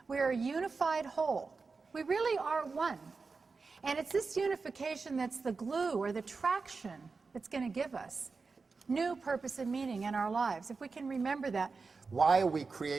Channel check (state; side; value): quieter; left; 4.4 dB